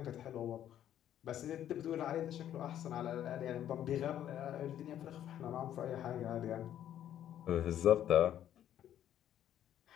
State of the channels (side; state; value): right; quieter; 11.0 dB